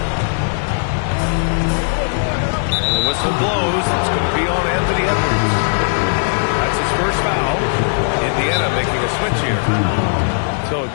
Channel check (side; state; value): right; silent; digital silence